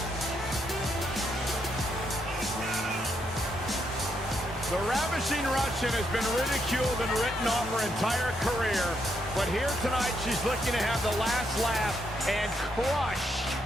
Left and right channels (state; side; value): normal; both; correlation 0.78